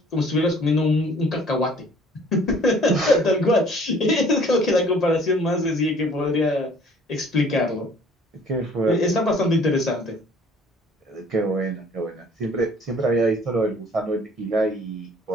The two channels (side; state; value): both; normal; correlation 0.54